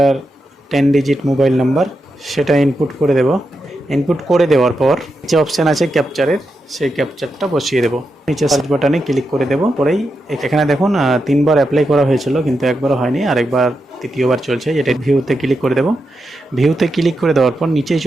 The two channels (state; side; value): normal; both; correlation 0.86